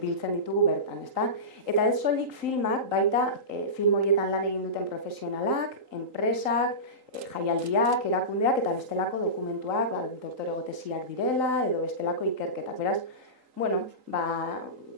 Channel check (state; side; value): late; left; 3.8 ms